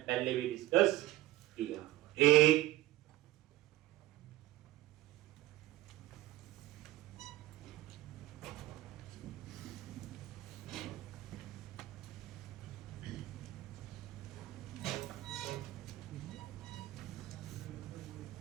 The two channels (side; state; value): left; quieter; 16.7 dB